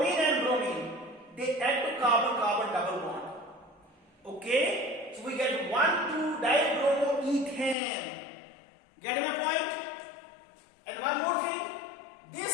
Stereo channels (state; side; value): drops out; right; at 7.8 s